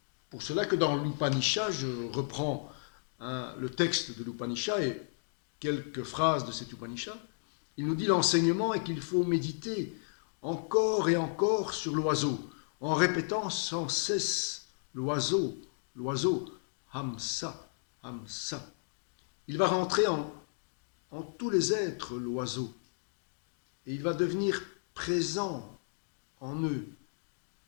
pour cela que dans l'Upanishad, je reprends le texte de l'Upanishad et quelques phrases de cet Upanishad, il nous dit l'enseignement est qu'il faut méditer encore et encore sur l'oiseau, en répétant sans cesse l'oiseau, l'oiseau, hamsa, hamsa. Il va rentrer en tous les êtres, l'oiseau, et il va devenir présent en eux,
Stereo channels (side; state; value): right; silent; digital silence